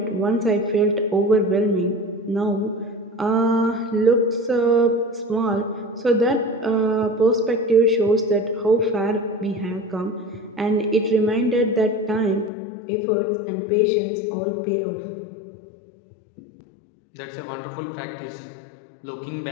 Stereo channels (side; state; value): right; drops out; at 12.5 s